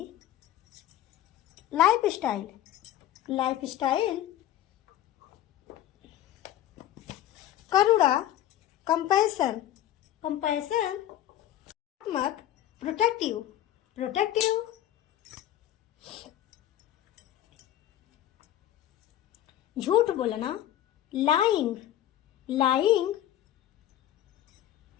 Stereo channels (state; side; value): quieter; right; 12.4 dB